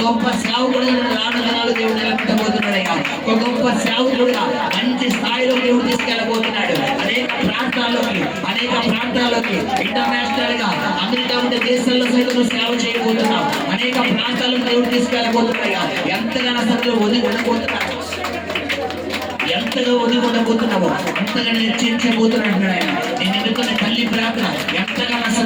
గొప్ప సేవకుడుగా రానున్నాడు దేవుడు నిలబెట్టబోతున్నాడయ్యా. ఒక గొప్ప సేవకుడుగా మంచి స్థాయిలో దేవుడు తీసుకెళ్ళబోతున్నాడు. అనేక ప్రాంతాల్లోకి ఇంటర్నేషనల్ గా అమెరికా ఉండే దేశాల్లో సైతం సేవ చేయబోతున్నావు. అనేక ప్రాంతాల్లో దేవుడు తీసుకెళ్ళబోతున్నాయా. ఎంతగా అసలు ఎంతగా ఒదిగొట్టబోతున్నావో అంతగా హెచ్చరించబోతున్నాడు ఆయన. నేను ఎన్నుకున్న తల్లి ప్రార్థన ఎంతగా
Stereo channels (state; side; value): identical; both; correlation 1.00